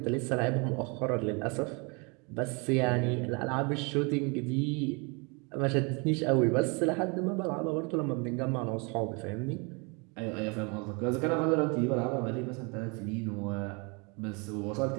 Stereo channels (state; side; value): quieter; left; 31.2 dB